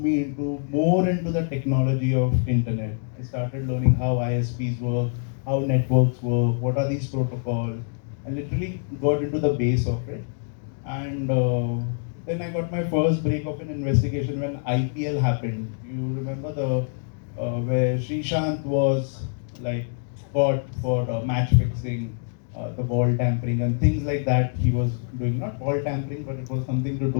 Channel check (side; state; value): right; silent; digital silence